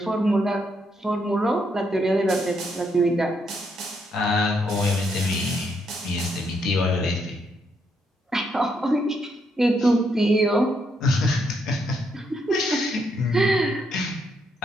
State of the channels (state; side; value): normal; both; correlation 0.76